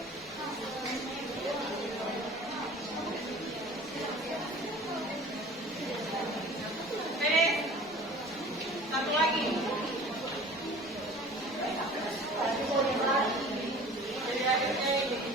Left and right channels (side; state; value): both; normal; correlation 0.44